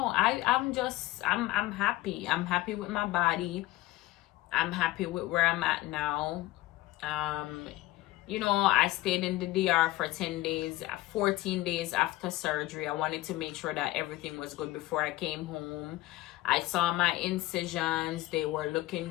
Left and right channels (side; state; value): right; quieter; 17.5 dB